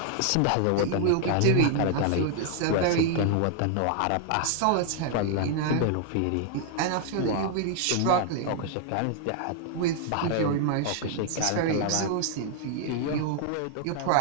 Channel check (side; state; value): both; different; correlation 0.00